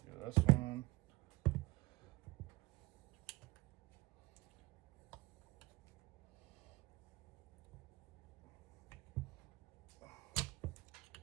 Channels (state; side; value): quieter; left; 21.0 dB